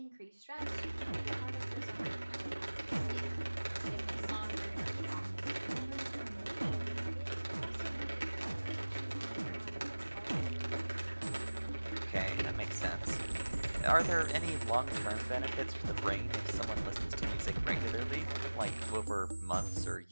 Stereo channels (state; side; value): inverted; both; correlation -1.00